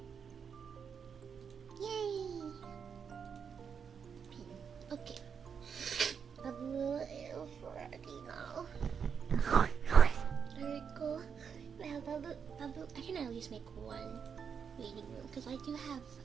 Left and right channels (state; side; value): quieter; left; 6.8 dB